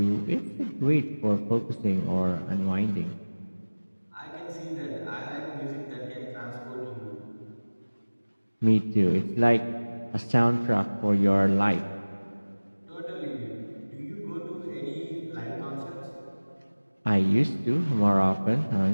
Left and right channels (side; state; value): both; inverted; correlation -1.00